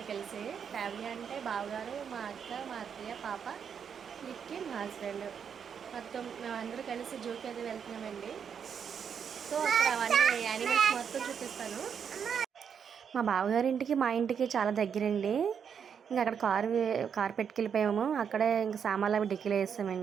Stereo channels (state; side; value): quieter; left; 7.3 dB